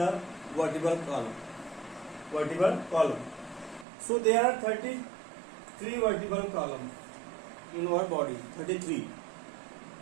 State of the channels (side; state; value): left; drops out; at 3.9 s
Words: vertebral column. So there are 33 vertebral columns in our body. 33.